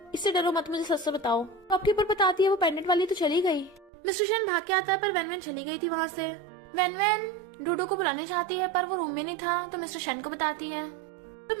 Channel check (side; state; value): left; drops out; at 3.9 s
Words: इससे डरो मत, मुझे सच से बताओ। शॉपकीपर बताती है, वो पेंडेंट वाली तो चली गई। मिस्टर शेन भाग के आता है पर वेनवेन चली गई थी वहाँ से। वेनवेन डूडू को बुलाने चाहती है पर वो रूम में नहीं था तो मिस्टर शेन को बताती है। तो